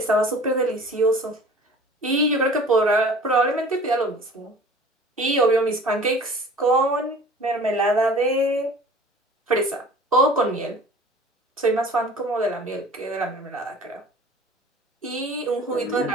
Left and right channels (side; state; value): both; normal; correlation 0.45